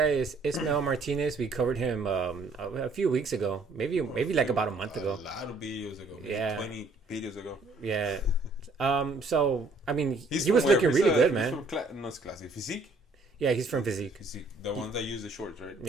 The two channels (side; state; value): left; quieter; 3.3 dB